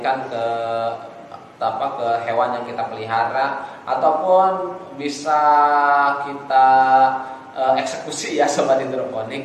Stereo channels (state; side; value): identical; both; correlation 1.00